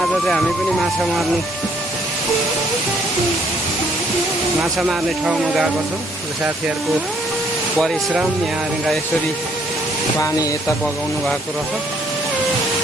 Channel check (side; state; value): both; normal; correlation 0.66